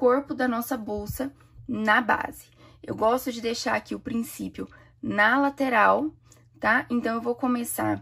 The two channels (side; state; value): both; identical; correlation 1.00